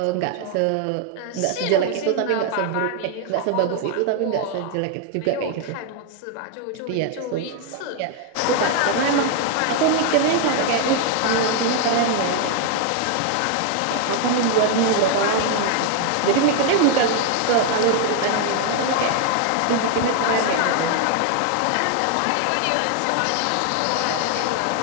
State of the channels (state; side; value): different; both; correlation 0.00